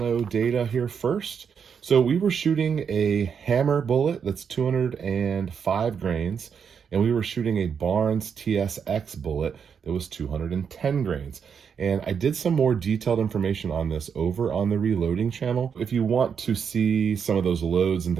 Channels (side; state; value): left; quieter; 6.9 dB